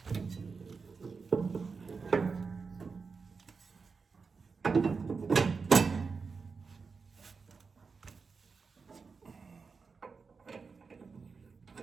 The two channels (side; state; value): left; quieter; 4.9 dB